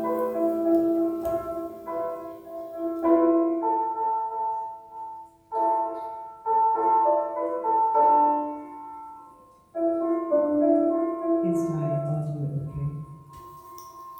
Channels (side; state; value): both; identical; correlation 1.00